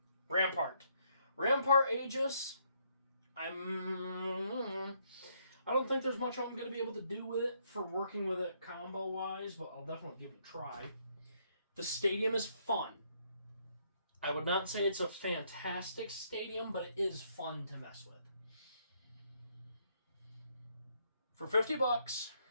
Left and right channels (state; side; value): inverted; both; correlation -0.71